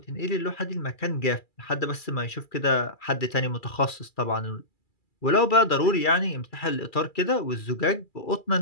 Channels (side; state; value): right; late; 2.3 ms